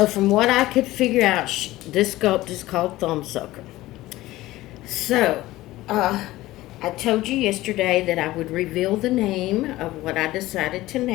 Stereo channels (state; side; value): quieter; right; 17.2 dB